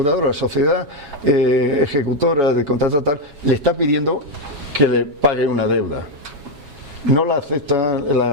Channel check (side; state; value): left; late; 7.2 ms